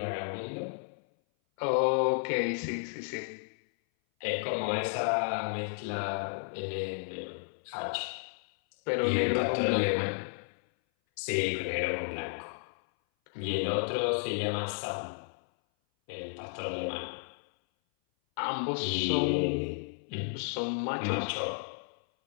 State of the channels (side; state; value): right; silent; 56 dB below the other